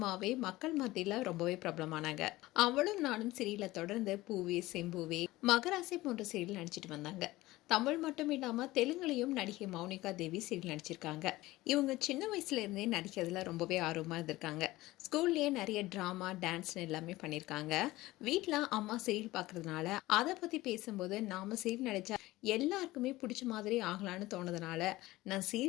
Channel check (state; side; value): quieter; right; 18.3 dB